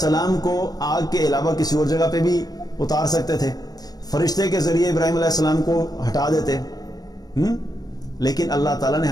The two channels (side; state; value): right; late; 0.19 ms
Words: کو آگ کے علاوہ کسی اور جگہ پہ بھی اتار سکتے تھے، فرشتے کے ذریعے ابراہیم علیہ السلام کو ہٹا دیتے. لیکن اللہ تعالیٰ نے